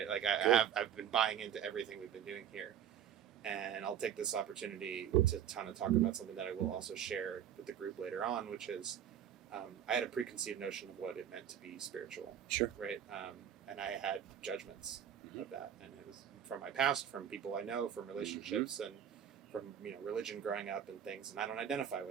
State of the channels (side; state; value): left; quieter; 9.3 dB